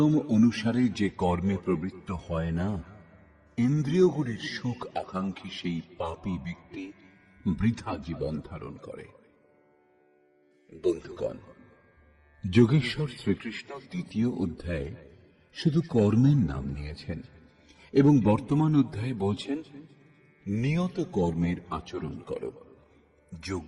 অনুসারে যে কর্মে প্রবৃত্ত হয় না, ইন্দ্রিয়গুলির সুখ আকাঙ্ক্ষী সেই পাপী ব্যক্তি বৃথা জীবন ধারণ করে। বন্ধুগণ, যোগেশ্বর শ্রীকৃষ্ণ ৩য় অধ্যায়ে শুধু কর্মের নাম নিয়েছেন এবং বর্তমান অধ্যায়ে বলছেন নিয়ত কর্মের আচরণ করো।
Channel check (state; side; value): identical; both; correlation 1.00